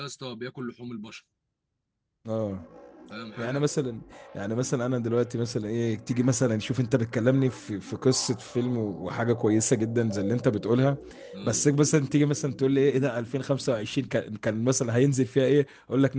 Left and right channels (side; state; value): both; identical; correlation 1.00